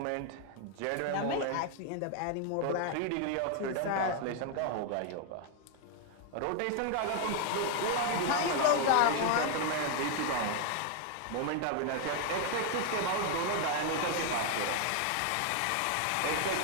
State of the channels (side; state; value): both; different; correlation 0.00